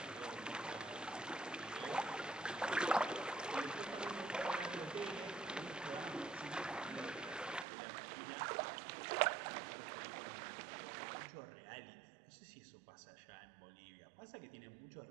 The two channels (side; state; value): left; drops out; at 7.7 s